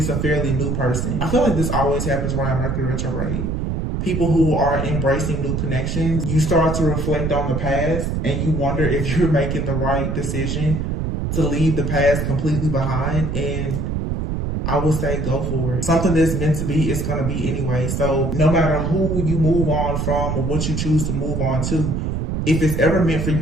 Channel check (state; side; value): noise; right; rumble, 1 dB below the sound